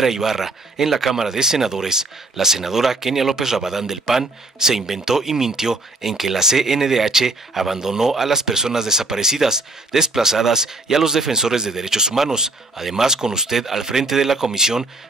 Ibarra en la Cámara de Senadores, la senadora Kenia López Rabadán del PAN se inventó y mintió en que la CNDH abandonó a las personas desaparecidas, desplazadas y a los defensores de derechos humanos. Además, con usted al frente de la comisión,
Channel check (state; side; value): quieter; left; 3.0 dB